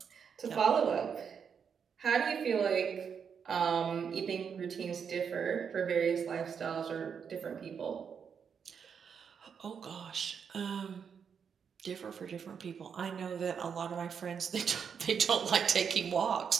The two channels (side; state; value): left; quieter; 6.9 dB